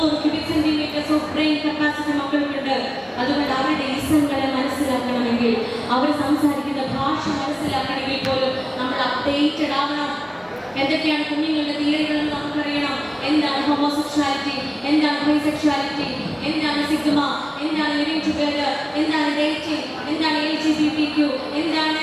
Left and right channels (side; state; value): both; identical; correlation 1.00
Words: cubic centimetres of brain capacity മക്കൾക്കുണ്ട്. അതുകൊണ്ട് അവരുടെ ഇസങ്ങളെ മനസ്സിലാക്കണമെങ്കിൽ, അവർ സംസാരിക്കുന്ന ഭാഷ മനസ്സിലാക്കണമെങ്കിൽ പോലും നമ്മൾ അപ്ഡേറ്റഡ് ആവണം. എന്തൊക്കെയാണ് കുഞ്ഞുങ്ങളുടെ തിയറികളെന്ന് നമുക്കറിയണം. എന്താണ് ഹോമോസെക്ഷുവാലിറ്റി, എന്താണ് ബൈസെക്ഷുവാലിറ്റി, എന്താണ് സിഗ്മ, എന്താണ് ലിവിംഗ് ടുഗദർ, എന്താണ് ഡേറ്റിംഗ്, എന്താണ് LGBTQ, എന്താണ്